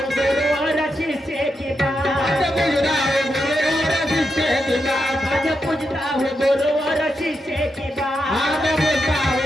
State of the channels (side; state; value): both; normal; correlation 0.85